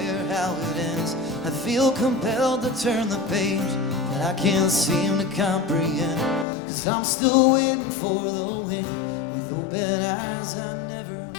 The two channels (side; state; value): right; drops out; at 6.5 s